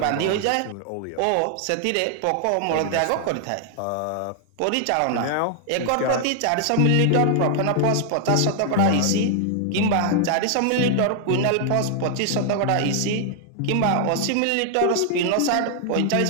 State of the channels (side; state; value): both; different; correlation 0.00